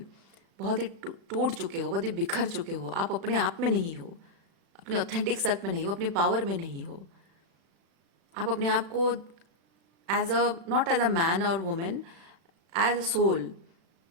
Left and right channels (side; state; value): left; late; 36 ms